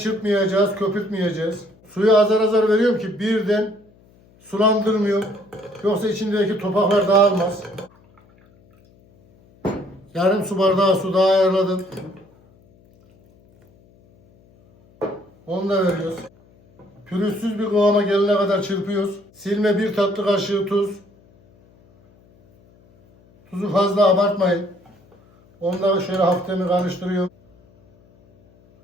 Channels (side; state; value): left; noise; hum, 30 dB below the sound